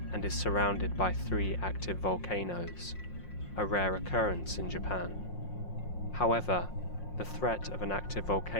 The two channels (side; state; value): right; late; 5.6 ms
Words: and is surrounded by 3 active volcanoes, a rare occurrence in Japan. However, the threat of an active